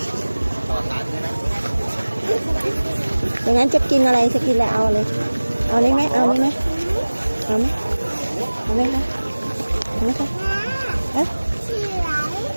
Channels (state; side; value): inverted; both; correlation -1.00